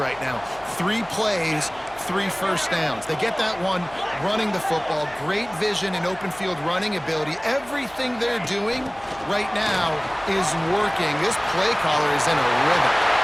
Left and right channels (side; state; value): left; noise; hum, 24 dB below the sound